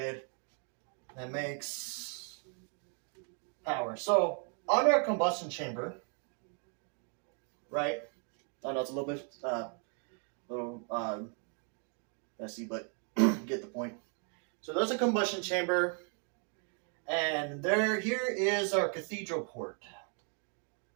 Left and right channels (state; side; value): quieter; left; 38.4 dB